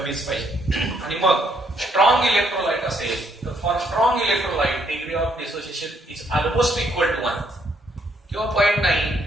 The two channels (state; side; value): normal; both; correlation 0.71